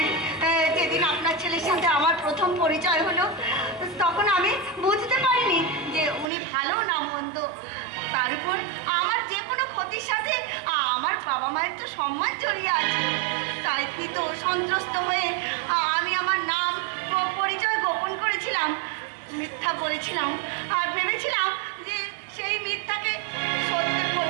যেদিন আপনার ছেলের সাথে আমার প্রথম পরিচয় হলো, তখন আমি বুঝতে পারিনি যে উনি ভালো না মন্দ। তার উপর আমার যে কোনো ক্ষতির সাথে আমার বাবা মায়ের তো সম্মান জড়িয়ে আছে। তাই ভীত সন্ত্রস্ত হয়ে আমি আমার নাম পরিচয় গোপন করেছিলাম, মিথ্যা বলেছিলাম আর ভেবেছিলাম যে সেই মিথ্যাকে সত্যে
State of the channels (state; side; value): drops out; left; at 6.2 s